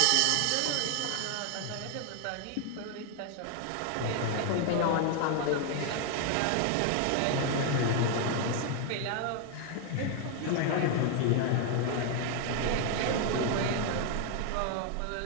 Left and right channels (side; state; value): both; different; correlation 0.00